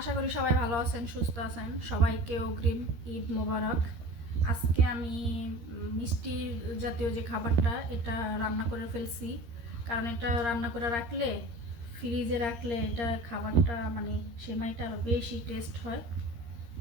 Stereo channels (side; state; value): left; late; 13 ms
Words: করি সবাই ভালো আছেন, সুস্থ আছেন। সবাইকে অগ্রিম ঈদ মোবারক। আজকে আমি মিষ্টির জাতীয় যে খাবারটা এটা রান্না করে ফেলছি। কারণ এটা রান্না করে রাখলে, ফ্রিজে রাখলে এটা খাবারটা মানে সেমাইটা আরও বেশি টেস্ট হয়।